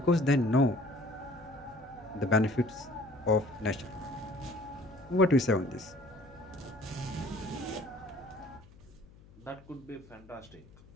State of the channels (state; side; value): noise; left; hum, 23 dB below the sound